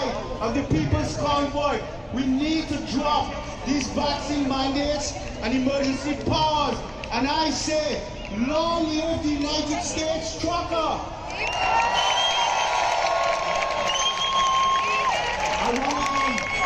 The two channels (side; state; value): both; identical; correlation 1.00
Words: of the people's convoy. We need to drop these vaccine mandates and emergency powers. And I say, long live the United States trucker! I